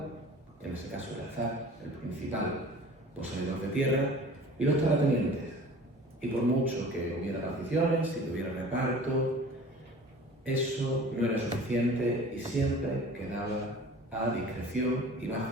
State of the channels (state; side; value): normal; both; correlation 0.43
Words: en ese caso el zar, el principal poseedor de tierra, y los terratenientes. Y por mucho que hubiera particiones, si hubiera reparto, eso no era suficiente y siempre quedaba a discreción y